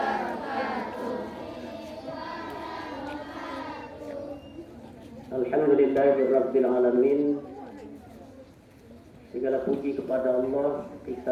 Alhamdulillahirabbil alamin. Segala puji kepada Allah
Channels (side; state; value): both; identical; correlation 1.00